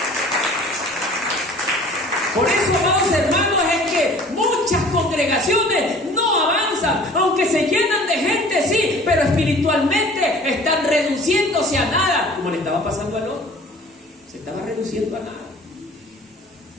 Por eso, amados hermanos, es que muchas congregaciones no avanzan, aunque se llenan de gente, sí, pero espiritualmente están reduciéndose a nada, como le estaba pasando a Lot. Se estaba reduciendo a nada.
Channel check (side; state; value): both; normal; correlation 0.48